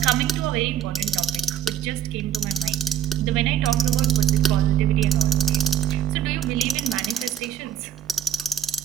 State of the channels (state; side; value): quieter; left; 10.2 dB